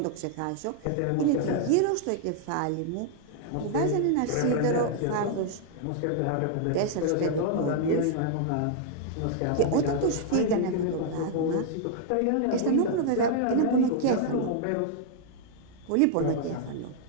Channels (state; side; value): different; both; correlation -0.01